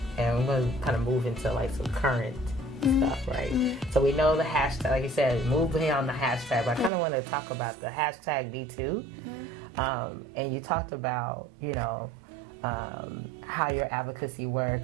And we're going to kind of move into, like, some current stuff, right? So we know the hashtag, like you said, move beyond the hashtag. But I kind of want to talk about the hashtag #MeToo. And you talked about, how your advocacy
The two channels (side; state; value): left; drops out; at 6.9 s